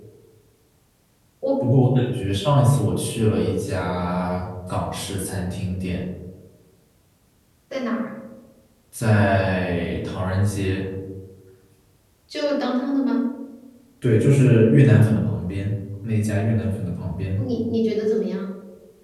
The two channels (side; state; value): both; identical; correlation 1.00